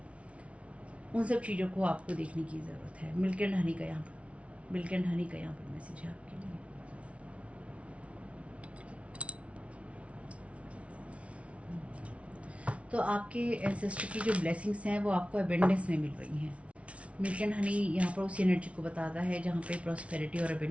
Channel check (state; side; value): late; left; 0.063 ms